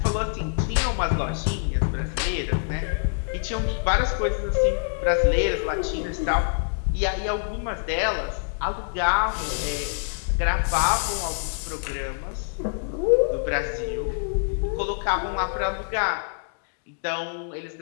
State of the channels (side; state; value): right; silent; digital silence